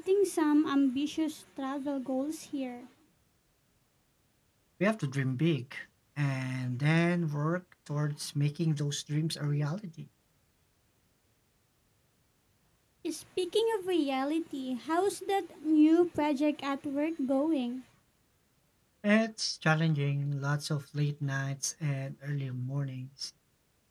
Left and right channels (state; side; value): identical; both; correlation 1.00